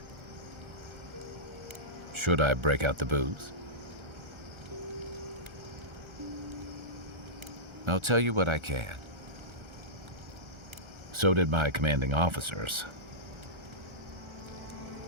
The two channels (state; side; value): late; left; 1.3 ms